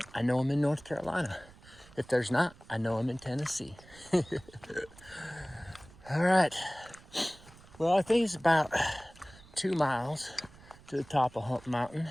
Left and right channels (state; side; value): noise; right; rumble, 22 dB below the sound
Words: I know I'm in North Carolina. If there's not, I know I'm in Tennessee. All right. Well, I think it's about 2 miles to the top of Hump Mountain.